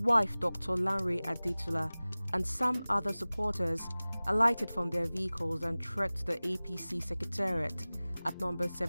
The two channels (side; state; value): both; inverted; correlation -0.99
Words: Dr. Lanre Adetula, and some other supporters alighted from their vehicles and trekked to the APC Secretariat at number